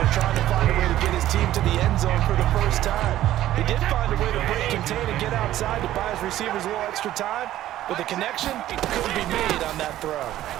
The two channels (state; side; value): quieter; left; 13.6 dB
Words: trying to find a way to get his team to the end zone for the first time. He did find a way to break, contain, and get outside to buy his receivers a little extra time, but the connection couldn't be made on that throw.